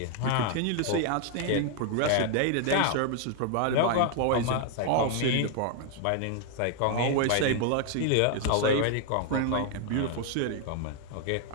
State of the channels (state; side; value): different; both; correlation 0.00